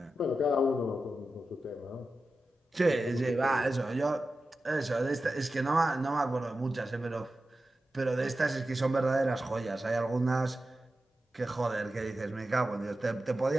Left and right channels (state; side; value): normal; both; correlation 0.92